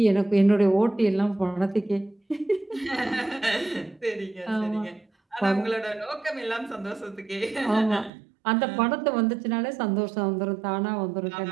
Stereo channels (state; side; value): drops out; left; at 8.1 s